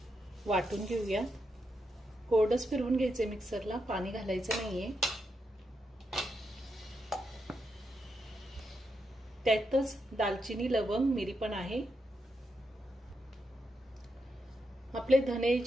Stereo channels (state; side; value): normal; both; correlation 0.83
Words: वाटून घेऊया। कोरडच फिरवून घ्यायचे मिक्सरला, पाणी घालायचं नाहीये। त्यातच दालचिनी, लवंग, मिरी पण आहे। आपले धने,